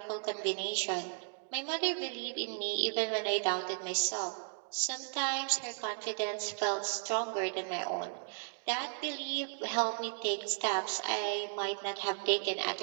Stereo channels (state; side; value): silent; left; 54 dB below the other